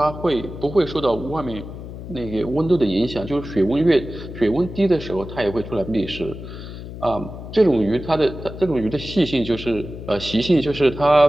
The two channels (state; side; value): noise; left; hum, 11 dB below the sound